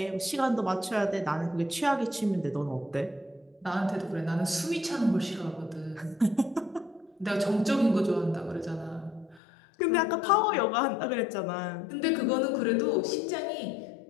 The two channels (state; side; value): drops out; right; at 9.4 s